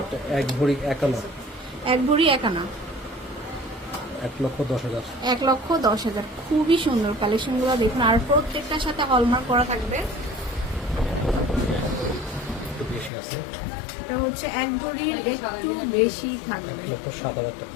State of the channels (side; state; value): right; drops out; at 13.1 s